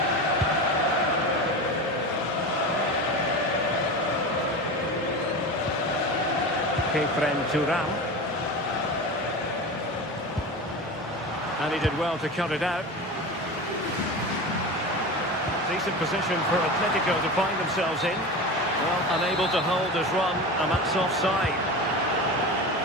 Turam. And he did well to cut it out. Decent position for Atletico to find themselves in. Well, unable to hold his run, and that's offside.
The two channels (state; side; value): normal; both; correlation 0.28